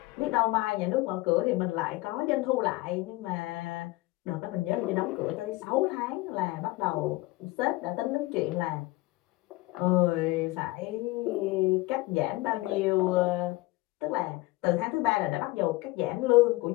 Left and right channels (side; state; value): right; quieter; 20.6 dB